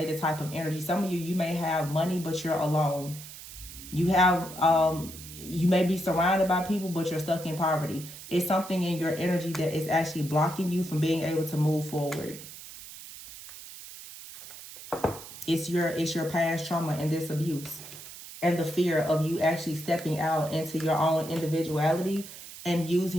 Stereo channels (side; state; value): right; noise; hiss, 14 dB below the sound